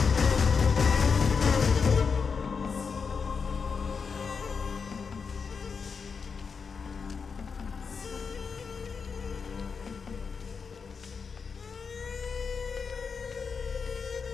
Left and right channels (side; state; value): right; quieter; 5.6 dB